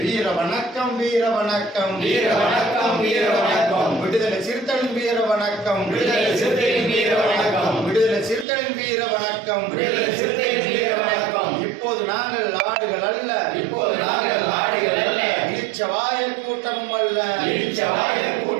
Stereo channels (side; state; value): left; drops out; at 8.5 s